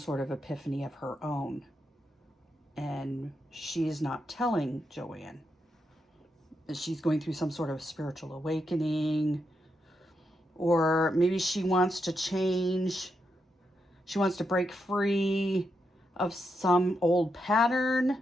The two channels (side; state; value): both; normal; correlation 0.83